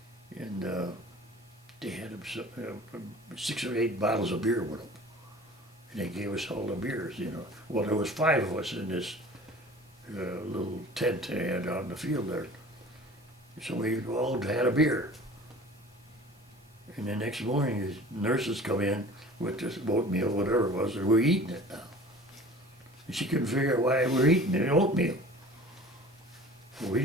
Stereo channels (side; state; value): both; normal; correlation 0.43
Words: and they had 6 or 8 bottles of beer with them. And they gave us all the beers, you know. Well, there was 5 of us in this little tent they had out in the field there. So we all had a beer. And the next morning, the nurses come in with this oatmeal, whatever it was, and we're eating it now. And she couldn't figure out why we're eating the oatmeal. Well, we